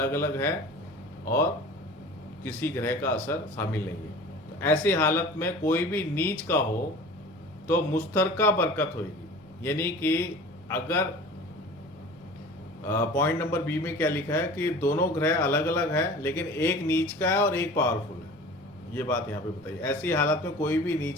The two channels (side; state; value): right; noise; rumble, 28 dB below the sound